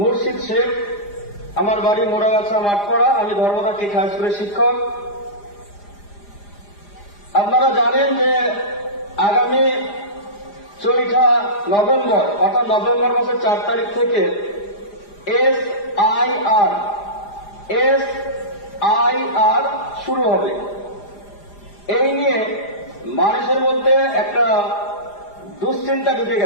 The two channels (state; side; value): late; right; 4.9 ms